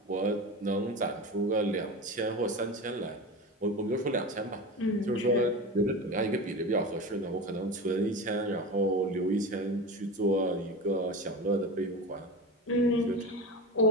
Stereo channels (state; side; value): normal; both; correlation 0.26